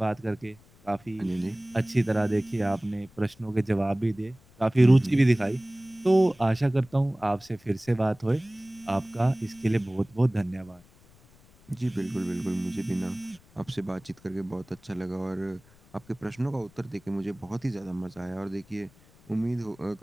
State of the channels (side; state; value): left; noise; rumble, 27 dB below the sound